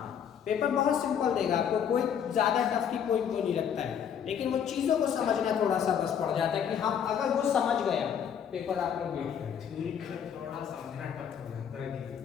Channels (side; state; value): right; quieter; 8.3 dB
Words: पेपर बहुत सिंपल देगा आपको, कोई ज़्यादा टफ की कोई वो नहीं रखता है, लेकिन वो चीज़ों को समझना थोड़ा सा बस पड़ जाता है कि हम अगर वो समझ गया पेपर आप लोग वेट करें। थोड़ा समझना टफ हो जाता है,